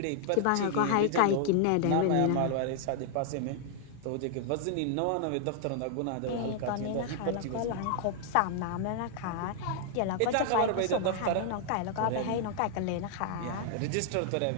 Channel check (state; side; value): different; both; correlation 0.00